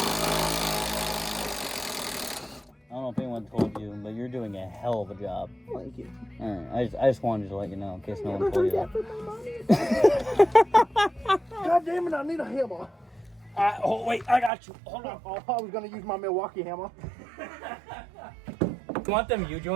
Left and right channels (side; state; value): left; drops out; at 14.5 s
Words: don't know if anyone told you, but you're doing a hell of a job. Thank you. All right, I just wanted to let you know in case no one told you that. God damn it, I need a hammer. Oh, wait, I got you. Hold on. Oh, I was going to use my Milwaukee hammer. You want them